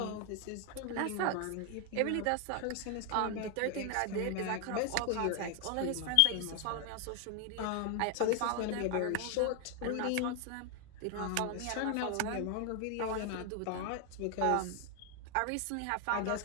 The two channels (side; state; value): both; different; correlation 0.00